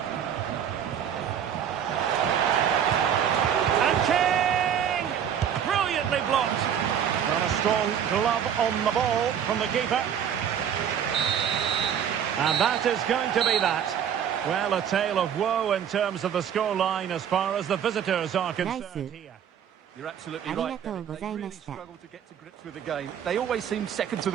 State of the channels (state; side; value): quieter; left; 8.8 dB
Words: And King! Brilliantly blocked. Well, a strong glove on the ball from the keeper. And that is going to be that. Well, a tale of woe in terms of the scoreline as far as the visitors are concerned here. You're absolutely right. They really struggle to get to grips with the game. They always seem second to